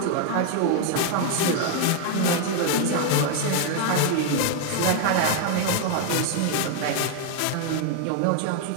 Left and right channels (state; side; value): different; both; correlation 0.00